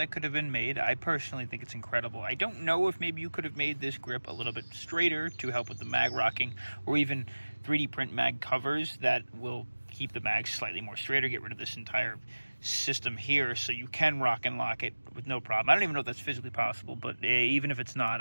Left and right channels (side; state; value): both; inverted; correlation -1.00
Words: could have been made, I personally think it's incredible. I don't know if maybe you could have made this grip a little bit straighter to help with the mag rocking, or even 3D print mag covers that will keep the mag slightly more straighter, get rid of this entire system here so you can rock and lock it with no problem. I don't even know if that's physically possible, but even if it's not,